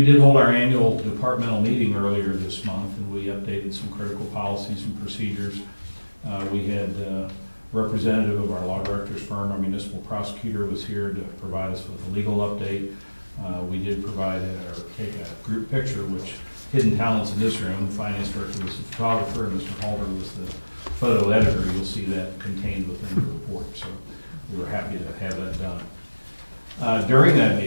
did hold our annual departmental meeting earlier this month, and we updated some critical policies and procedures. We had a representative of our law director's firm, our municipal prosecutor, was here to provide us with a legal update. We did provide take a group picture, which hidden talents in this room. The finance director was the photographer, and Mr. Halder was the photo editor. You'll see that contained within the report. So we were happy to have that done. During that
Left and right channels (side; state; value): both; inverted; correlation -1.00